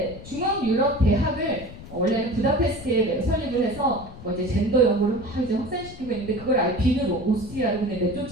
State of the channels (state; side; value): noise; left; rumble, 15 dB below the sound